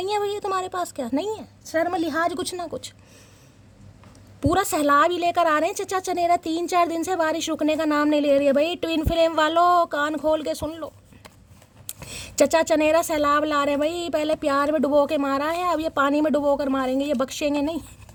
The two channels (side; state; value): both; identical; correlation 1.00